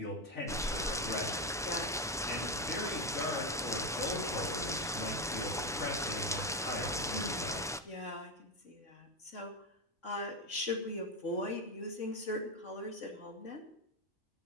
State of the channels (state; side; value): normal; both; correlation 0.10